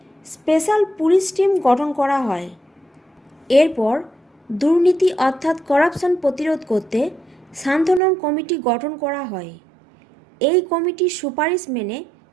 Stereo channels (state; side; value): drops out; left; at 8.0 s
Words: স্পেশাল পুলিশ টিম গঠন করা হয়। এরপর দুর্নীতি অর্থাৎ করাপশন প্রতিরোধ করতে সান্থনম কমিটি গঠন করা হয়। এই কমিটির সুপারিশ মেনে